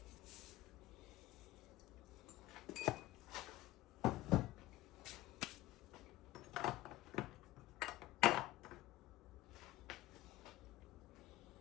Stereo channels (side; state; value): right; quieter; 16.3 dB